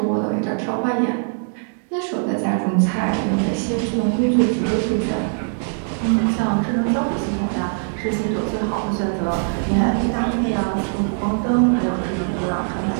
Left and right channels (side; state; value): left; silent; 65 dB below the other